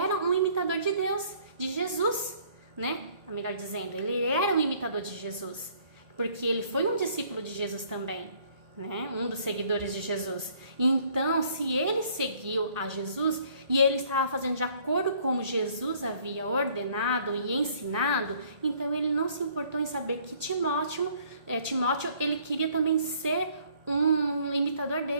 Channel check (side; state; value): left; late; 1.4 ms